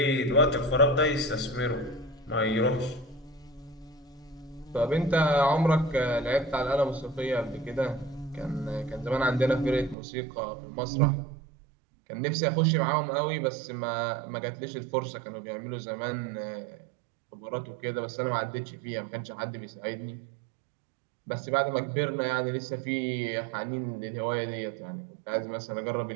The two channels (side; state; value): left; drops out; at 10.0 s